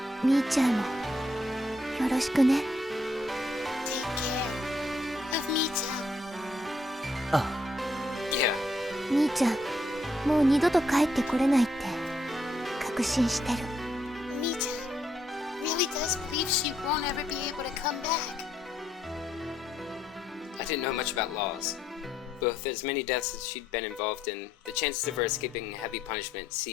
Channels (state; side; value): normal; both; correlation 0.74